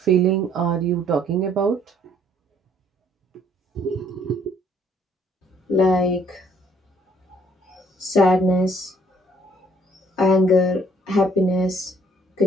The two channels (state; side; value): normal; both; correlation 0.63